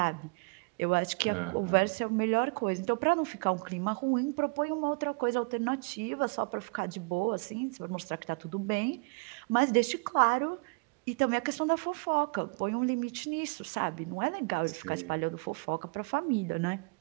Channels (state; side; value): quieter; left; 32.1 dB